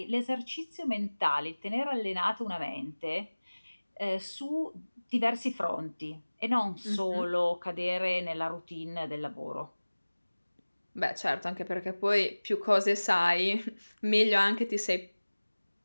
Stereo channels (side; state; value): both; inverted; correlation -1.00